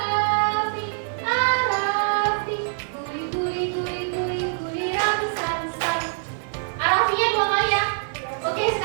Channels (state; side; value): silent; left; digital silence